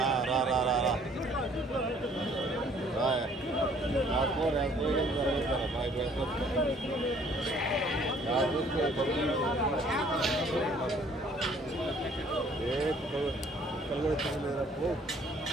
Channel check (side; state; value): both; normal; correlation 0.59